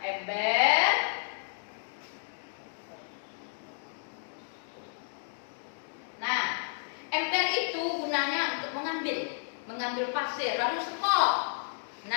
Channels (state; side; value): silent; right; digital silence